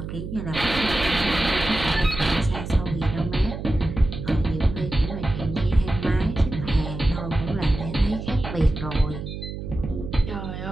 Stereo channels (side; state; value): right; noise; hum, 8 dB below the sound